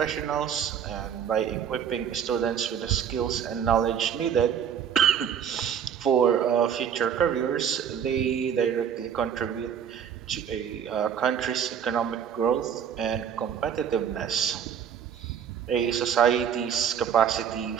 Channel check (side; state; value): left; quieter; 8.3 dB